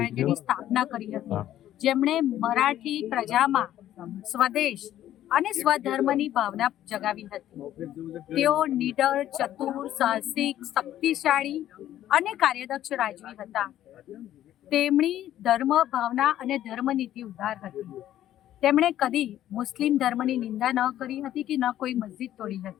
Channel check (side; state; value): right; quieter; 12.4 dB